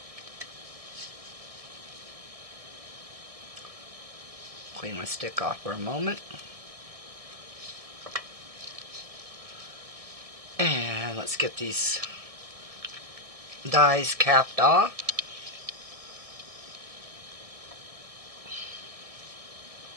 Clean my stick off for a moment. And let's get these dies capped off.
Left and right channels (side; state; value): left; late; 1.7 ms